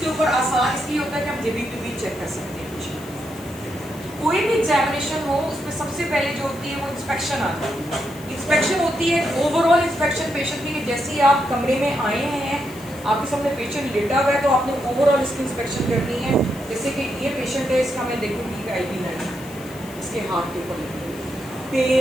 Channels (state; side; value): noise; left; hiss, 19 dB below the sound